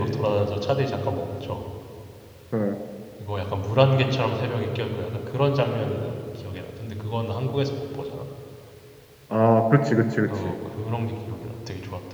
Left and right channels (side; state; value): both; identical; correlation 1.00